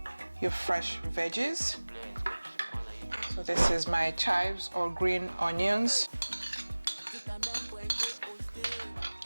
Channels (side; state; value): both; inverted; correlation -1.00